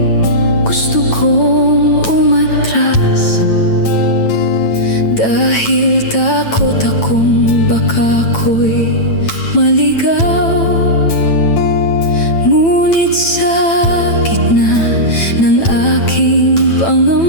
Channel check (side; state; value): right; late; 9.0 ms